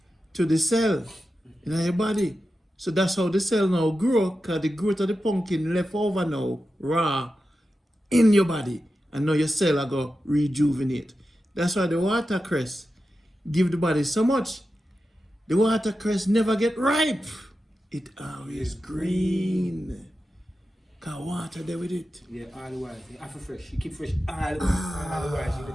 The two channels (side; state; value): both; normal; correlation 0.91